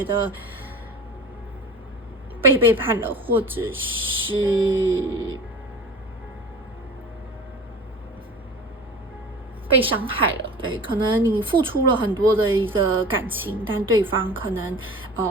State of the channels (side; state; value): both; normal; correlation 0.38